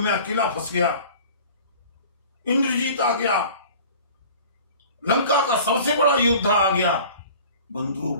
अकेला फंस गया, इंद्रजीत आ गया, लंका का सबसे बड़ा योद्धा आ गया। बंधु,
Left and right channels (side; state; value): both; inverted; correlation -0.44